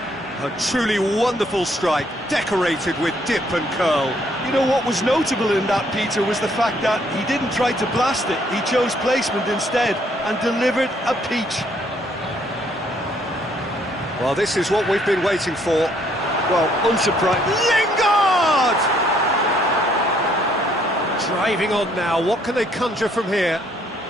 A truly wonderful strike, decorated with dip and curl. You know what was notable in that, Peter, was the fact that he didn't try to blast it. He chose placement instead and delivered a peach. Well, this is what we've been waiting for. Well, unsurprising. Lingard! Driving on now, what can they conjure from here?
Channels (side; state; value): both; normal; correlation 0.67